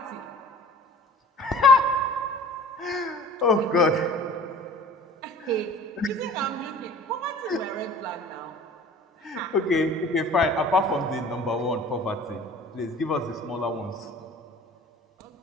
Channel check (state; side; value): normal; both; correlation 0.46